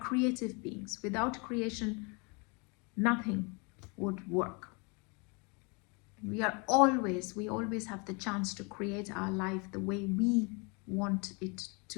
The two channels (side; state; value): right; quieter; 31.5 dB